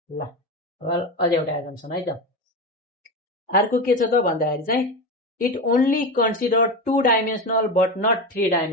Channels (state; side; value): normal; both; correlation 0.20